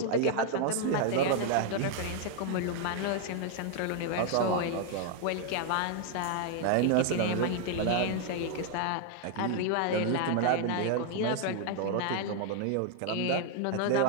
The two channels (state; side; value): different; both; correlation 0.00